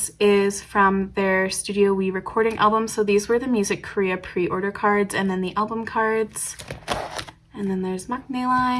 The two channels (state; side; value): identical; both; correlation 1.00